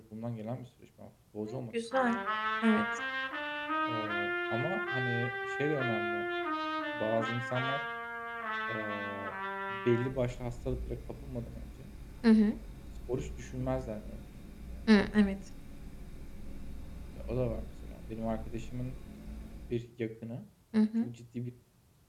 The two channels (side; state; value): both; identical; correlation 1.00